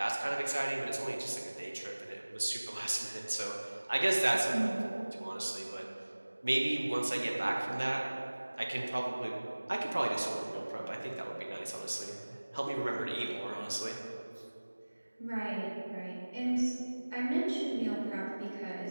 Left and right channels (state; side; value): inverted; both; correlation -1.00